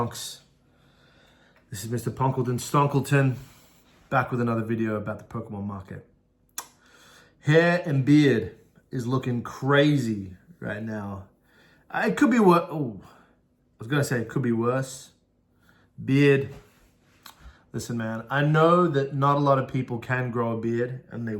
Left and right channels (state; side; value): identical; both; correlation 1.00